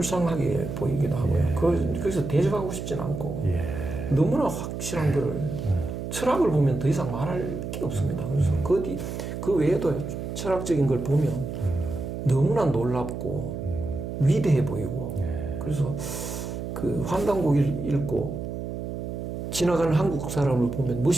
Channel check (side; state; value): right; noise; hum, 6 dB below the sound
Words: 보이기도 하고요. 거기서 대적하고 싶진 않고 너무나 확실한 거를 철학을 보면 더 이상 말할 게 없습니다. 그래서 그 외에도 철학적인 걸 보면 너무나 놀랍고 위대해 보이고 그래서 환단고기를 읽고 지나가는 한국 사람을 보면